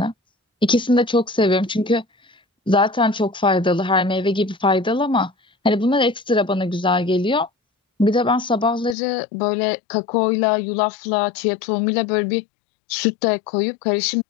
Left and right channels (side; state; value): right; drops out; at 9.0 s